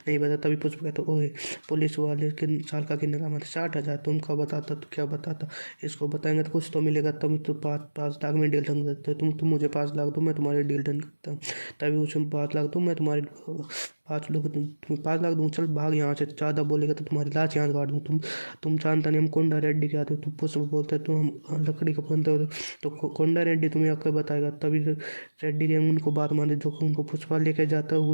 नहीं बता। तभी पुष्प कहता, ओए पुलिस वाले के साल का कितने का मत 60,000, तुम क्या बताता तो क्या बताता, इसको बताएंगे तो कुछ तो मिलेगा। तुम तो 5 लाख में डील डन करते हो, तुम मुझे 5 लाख दो, मैं तुम्हारी डील डन करता हूँ। तभी उसमें 5 लाख दो, मैं तुम्हारी 5 लोग तुम्हें 5 लाख दूँ, चल भाग यहाँ से, ज़्यादा बोलेगा तो तुम्हारी लाश यहाँ से काट दूँ। तुम जानता नहीं हम कोंडा रेड्डी के आते हो। तुम पुष्प बोलते तुम हम लकड़ी का बनते हो, तो कोंडा रेड्डी तुम्हें आकर बताएगा। तभी रेड्डी गैंग उनको बात माने, जो उनको पुष्पा लेके जाता है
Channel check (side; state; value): both; inverted; correlation -1.00